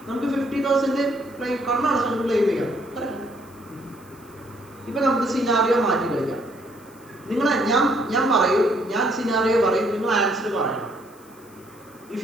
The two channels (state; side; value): noise; left; hiss, 26 dB below the sound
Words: നമുക്ക് 50,000 ക്ലെയിം കണ്ണാണ് നമുക്ക് ക്ലെയിം ചെയ്യാം. ഇപ്പൊ നമുക്ക് സിനാറിയോ മാറ്റി കളിക്കാം. ഞാൻ സിനാറിയോ പറയും, നിങ്ങൾ ആൻസർ പറയണം. If